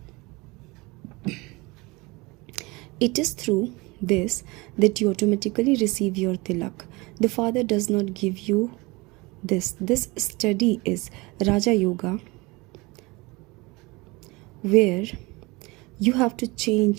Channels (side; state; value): left; quieter; 24.4 dB